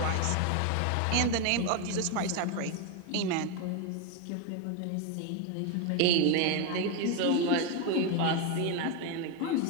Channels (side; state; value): both; different; correlation 0.01